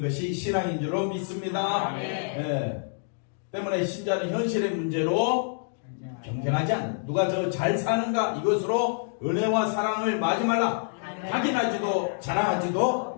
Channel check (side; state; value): right; silent; digital silence